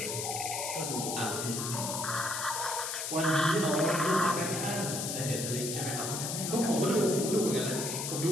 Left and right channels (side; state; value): left; noise; hiss, 3 dB below the sound